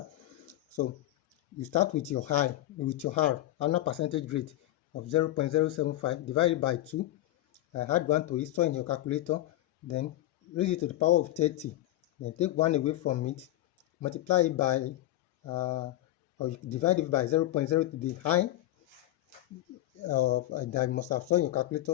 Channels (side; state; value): right; quieter; 14.9 dB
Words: So you start with your high, with your R, annual percentage rate of 0.075 divided by 2. Add 1 to it, store in your calculator, then raise it to the power of 30. Then take 1 away from it, multiply it by, or you divide it by 0.0 to the high that you must have stored in your